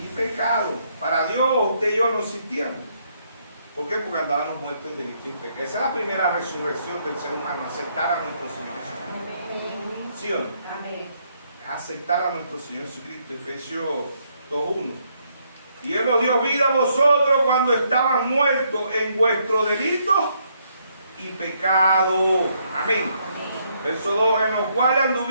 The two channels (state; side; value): inverted; both; correlation -0.73